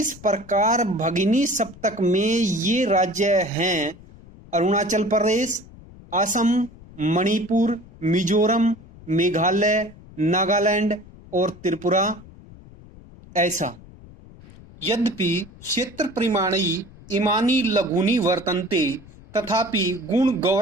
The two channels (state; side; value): noise; left; rumble, 21 dB below the sound